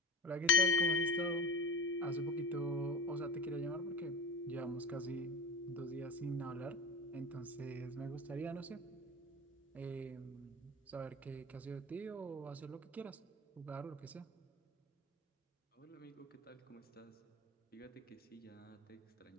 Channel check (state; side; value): normal; both; correlation 0.33